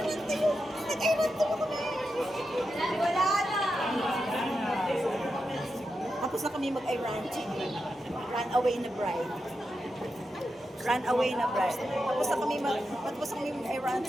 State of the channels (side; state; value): both; normal; correlation 0.88